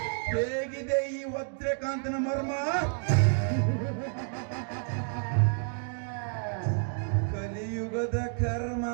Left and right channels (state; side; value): silent; left; 58 dB below the other